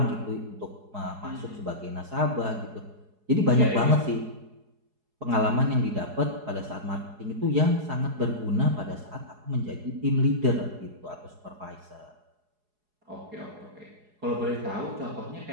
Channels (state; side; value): late; left; 4.8 ms